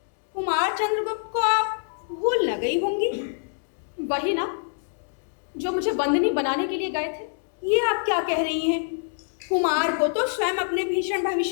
कुमार चंद्रगुप्त को आप भूल न गई होंगी। वही ना, जो मुझे बंदनी बनाने के लिए गए थे। ये आप क्या कह रही हैं? कुमार को तो स्वयं अपने भीषण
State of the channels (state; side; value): silent; right; digital silence